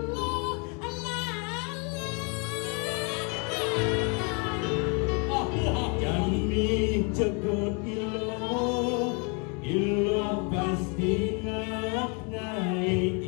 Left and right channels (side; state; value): right; quieter; 35.4 dB